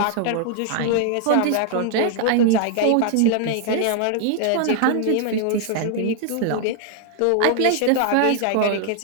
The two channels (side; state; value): both; different; correlation -0.01